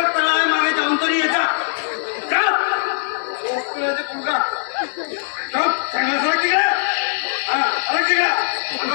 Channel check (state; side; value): silent; right; 66 dB below the other